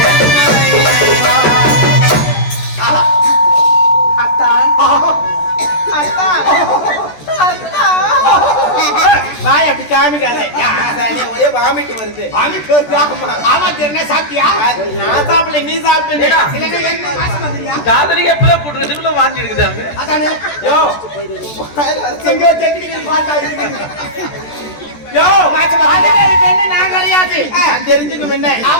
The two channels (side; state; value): right; late; 14 ms